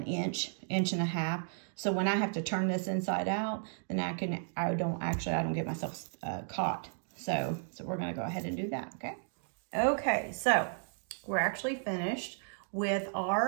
inch and a half. So when I have to turn this inside out, then I don't get myself caught. So we're going to go ahead and do that, okay? Okay, so we're actually finished with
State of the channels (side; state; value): left; silent; digital silence